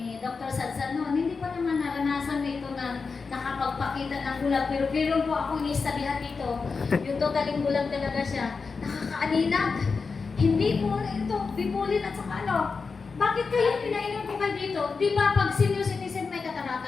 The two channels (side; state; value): right; quieter; 4.8 dB